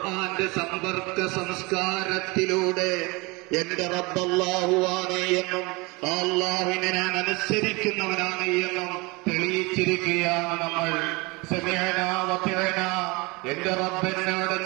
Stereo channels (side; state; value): left; quieter; 25.7 dB